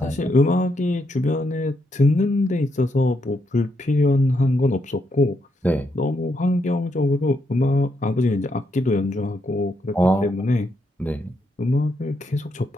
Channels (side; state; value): both; normal; correlation 0.79